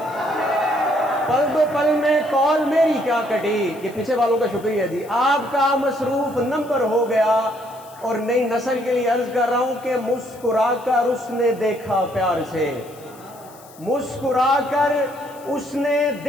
पल दो पल में कॉल मेरी क्या कटी, ये पीछे वालों का शुक्रिया जी। आपका मसरूफ नंबर हो गया। और नई नस्ल के लिए अर्ज कर रहा हूं कि मुस्कुराकर उसने देखा प्यार से, मुस्कुराकर उसने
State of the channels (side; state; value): left; noise; hiss, 24 dB below the sound